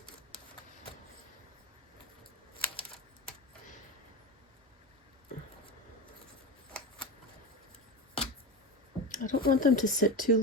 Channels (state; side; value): normal; both; correlation 0.22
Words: I don't want them to sit too